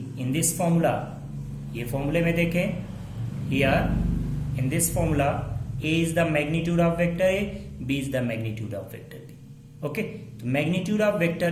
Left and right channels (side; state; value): both; identical; correlation 1.00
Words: this formula, ये फॉर्मूले में देखें, here in this formula a is the magnitude of vector a, b is the magnitude of vector b। Okay, तो magnitude of vector